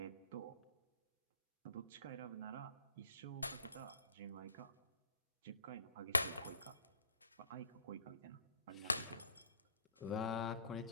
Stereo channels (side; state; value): both; inverted; correlation -0.54